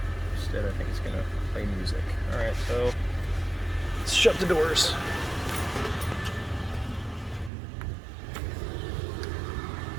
Instead, I think it's going to play music. Alright, so let's shut the doors.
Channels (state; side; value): drops out; left; at 7.5 s